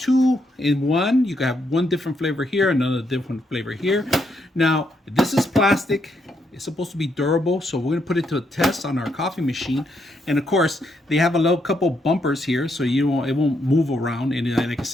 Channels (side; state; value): both; normal; correlation 0.77